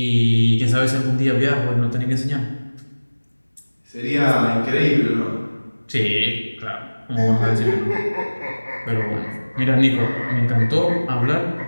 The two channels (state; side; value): inverted; both; correlation -1.00